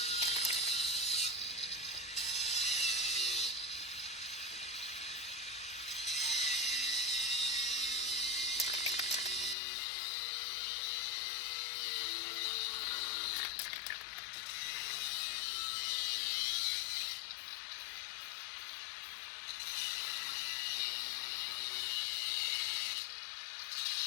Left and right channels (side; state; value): right; drops out; at 9.6 s